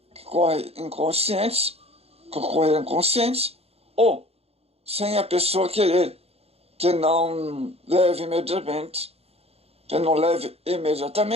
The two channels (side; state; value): left; late; 0.29 ms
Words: que ocorre inconscientes, ou sem a pessoa querer, que não leve